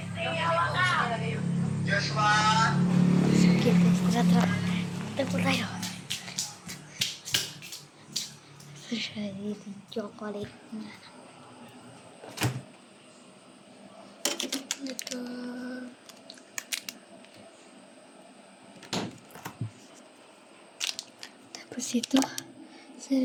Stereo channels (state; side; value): identical; both; correlation 1.00